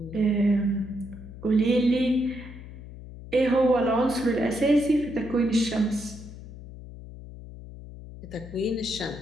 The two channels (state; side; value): noise; left; hum, 14 dB below the sound